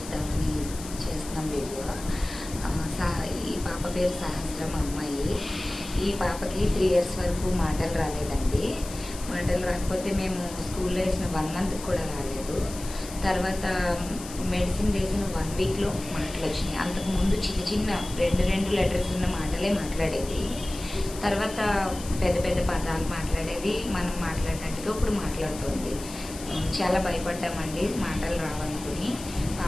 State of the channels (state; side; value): noise; left; hiss, 13 dB below the sound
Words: చేస్తున్నాం వీడియో. ఈ పాప పేరు సహస్రం అమ్మాయి. ఈ పాపకి 3 years వరకు మాటలు రాలేదండి. మాటలు రాకపోతే మేము స్కూల్లో వేసిన 1 month కూడా రాలేదు. తర్వాత మెడిసిన్ వేసిన 1 weekలో మాటలు వచ్చినాయి. అంతకుముందు చిన్న చిన్న 2 letters ఉన్న మాటలే మాట్లాడేది. తర్వాత పెద్ద పెద్ద పదాలు మాట్లాడేది. మనం మాట్లాడినట్టుగా ఇప్పుడు మాట్లాడుతుంది. చాలా భయపడ్డామండి మాటలు రావనుకుని.